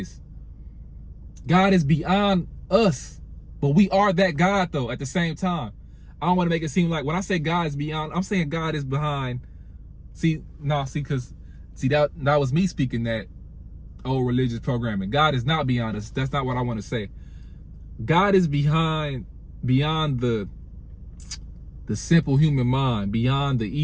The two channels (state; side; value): identical; both; correlation 1.00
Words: God is beyond us, but we are that God though at the same time. I don't want to make it seem like when I say God is beyond, I'm saying God is behind. Because that was me speaking that old religious programming. God is not beyond us. That's not what I want to say. God is beyond the simple human mind, beyond the